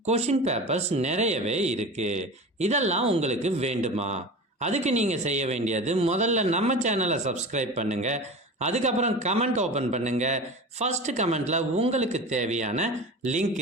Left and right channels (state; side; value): normal; both; correlation 0.32